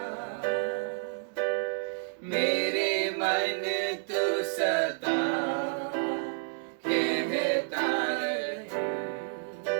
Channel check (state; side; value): silent; left; digital silence